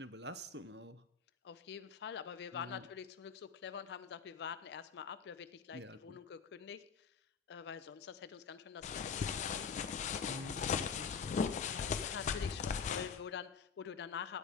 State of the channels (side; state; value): right; quieter; 6.1 dB